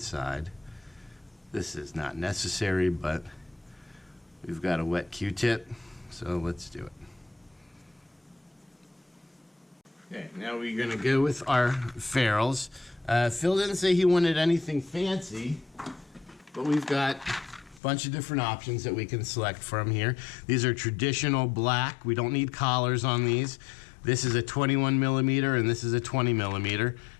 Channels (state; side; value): drops out; right; at 17.8 s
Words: This is not necessary, but we've got a wet Q-tip, so let's do it. Okay, now we're gonna go with our ferrules. Phil didn't say he wanted anything fancy, but we've got bunch of different options that we can select from here. These are traditional black. We don't need collars on these. This is a 21 millimeter and this is a 20 millimeter.